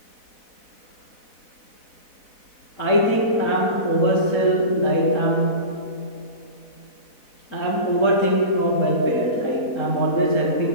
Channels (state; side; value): late; right; 4.0 ms